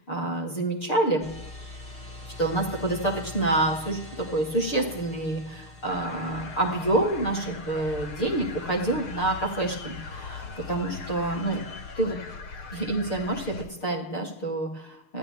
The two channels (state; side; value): late; right; 6.6 ms